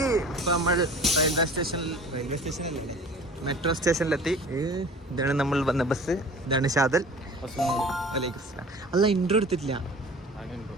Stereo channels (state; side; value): normal; both; correlation 0.43